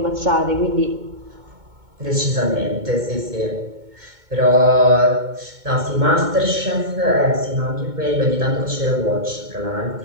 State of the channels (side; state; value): left; late; 2.2 ms